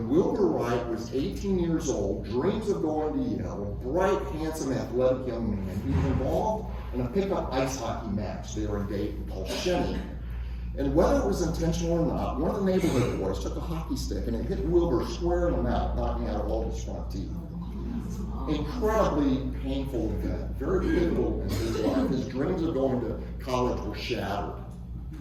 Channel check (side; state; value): both; identical; correlation 1.00